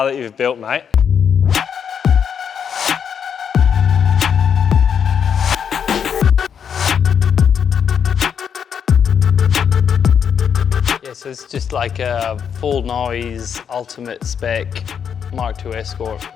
that you've built, mate. So it's just like a full noise, ultimate spec Mark II Escort.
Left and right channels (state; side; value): quieter; right; 7.5 dB